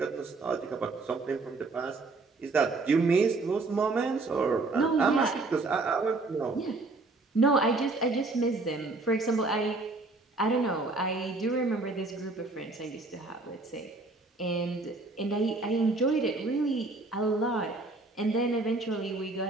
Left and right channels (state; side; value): quieter; left; 3.4 dB